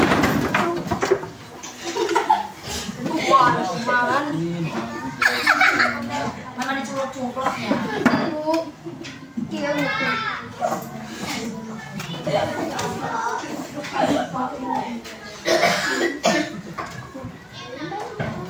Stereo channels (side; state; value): both; identical; correlation 1.00